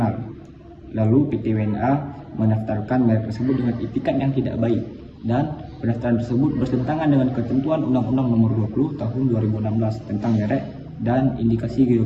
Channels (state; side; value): identical; both; correlation 1.00